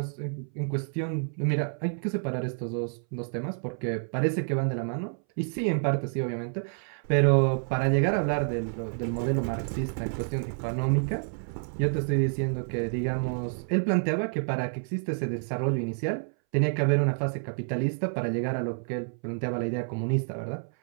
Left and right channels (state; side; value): silent; left; 59 dB below the other